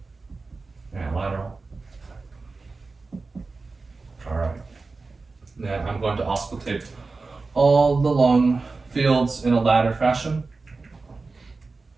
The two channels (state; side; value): quieter; left; 3.9 dB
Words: And lateral. All right. Then I'm going to auscultate all the lung fields in a ladder fashion.